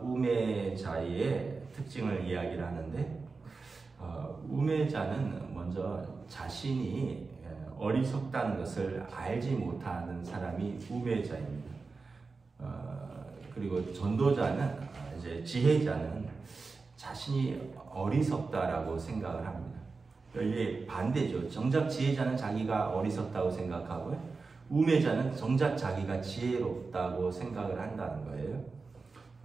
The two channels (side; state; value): left; quieter; 4.2 dB